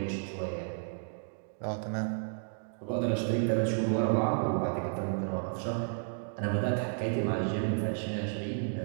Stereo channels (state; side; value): silent; left; digital silence